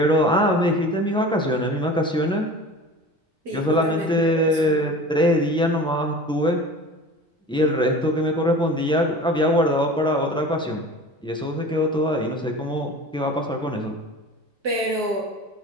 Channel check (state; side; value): normal; both; correlation 0.38